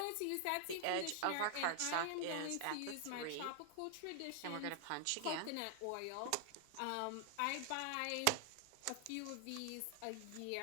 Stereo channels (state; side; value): different; both; correlation 0.00